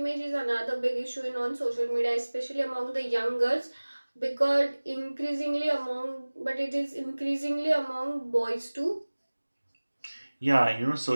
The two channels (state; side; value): inverted; both; correlation -1.00